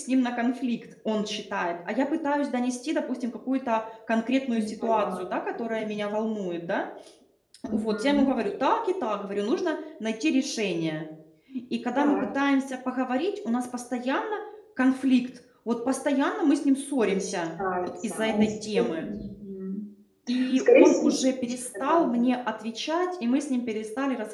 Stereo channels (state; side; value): identical; both; correlation 1.00